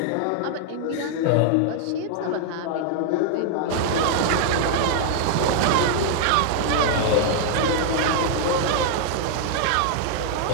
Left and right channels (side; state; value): both; different; correlation 0.00